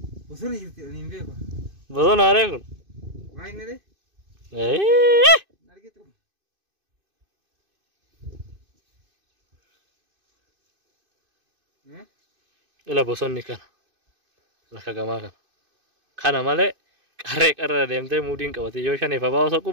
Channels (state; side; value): late; left; 2.5 ms